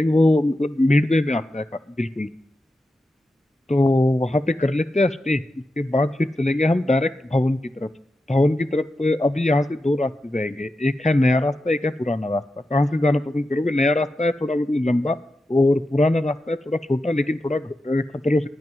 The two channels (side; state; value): both; normal; correlation 0.90